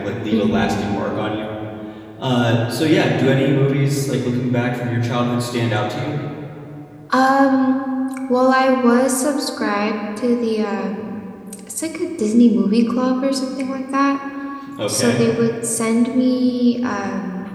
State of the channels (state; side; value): identical; both; correlation 1.00